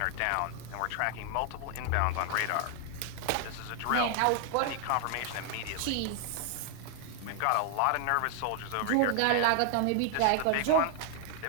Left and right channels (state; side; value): different; both; correlation 0.00